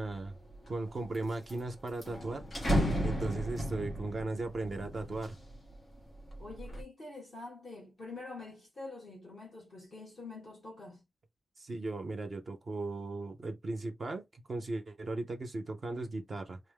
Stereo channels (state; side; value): normal; both; correlation 0.88